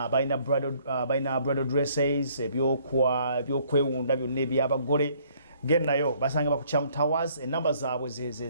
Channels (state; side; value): inverted; both; correlation -0.62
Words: balina bridal dresses ebyokwewunda byonna ebyabagole gennayo basanga bakuchamu towers enamba zaabwe